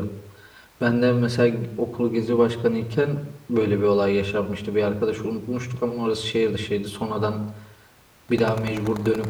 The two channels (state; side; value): identical; both; correlation 1.00